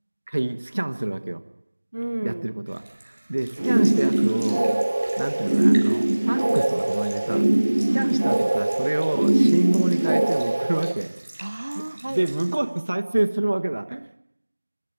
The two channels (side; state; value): both; inverted; correlation -1.00